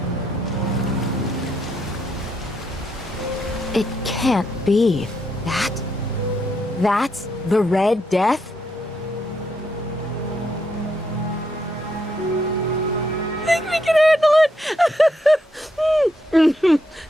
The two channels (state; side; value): normal; both; correlation 0.78